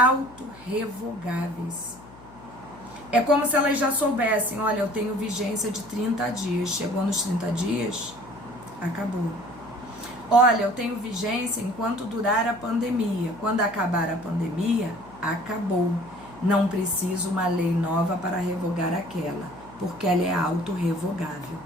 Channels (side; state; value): left; noise; hum, 21 dB below the sound